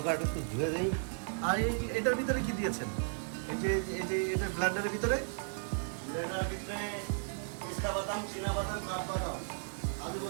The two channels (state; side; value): silent; left; 55 dB below the other